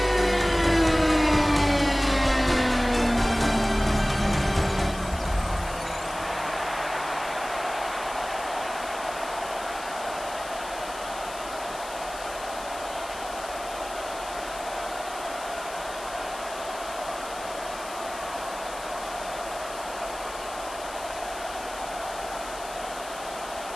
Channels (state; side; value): noise; left; hiss, 14 dB below the sound